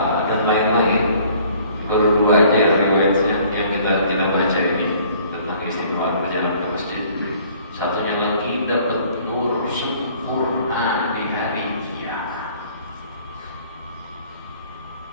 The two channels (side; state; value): both; inverted; correlation -0.56